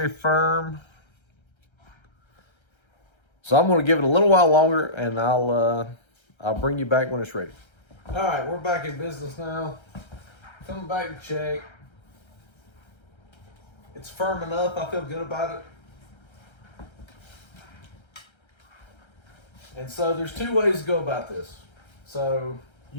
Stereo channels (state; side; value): late; right; 1.3 ms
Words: firm. So I'm going to give it a little while longer, and I'll bring you back when it's ready. All right, we're back in business now. Coming back to check. It's firm enough. I feel good about it. And so there's two ways to go about this. So